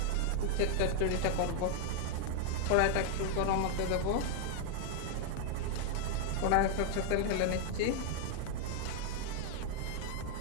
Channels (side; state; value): both; different; correlation 0.00